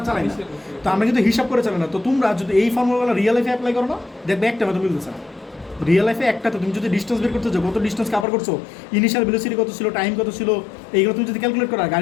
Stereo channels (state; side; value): drops out; right; at 8.2 s